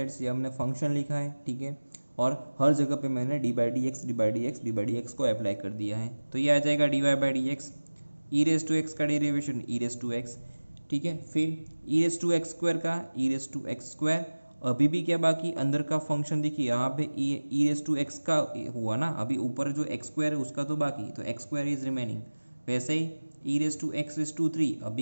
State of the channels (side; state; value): both; inverted; correlation -1.00